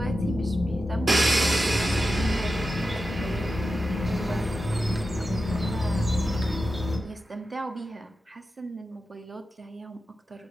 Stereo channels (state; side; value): normal; both; correlation 0.91